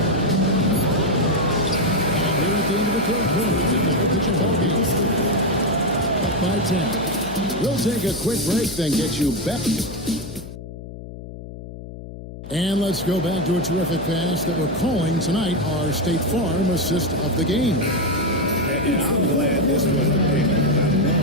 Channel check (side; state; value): left; noise; hum, 12 dB below the sound